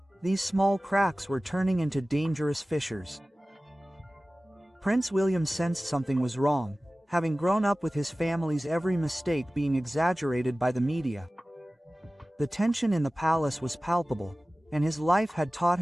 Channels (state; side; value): normal; both; correlation 0.97